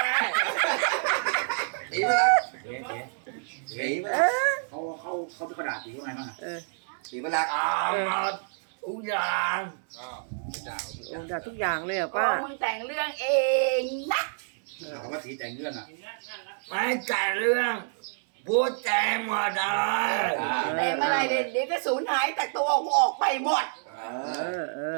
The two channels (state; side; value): silent; left; 59 dB below the other